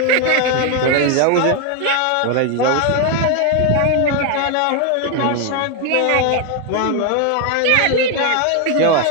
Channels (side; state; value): both; different; correlation 0.01